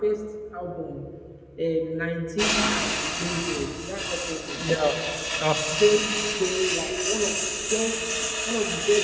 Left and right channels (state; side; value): identical; both; correlation 1.00